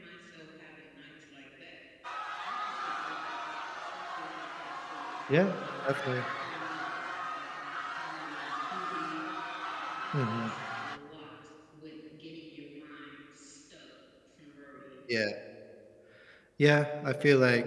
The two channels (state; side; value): identical; both; correlation 1.00